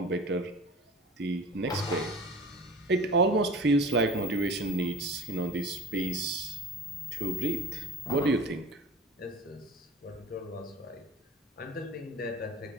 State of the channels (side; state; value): both; normal; correlation 0.39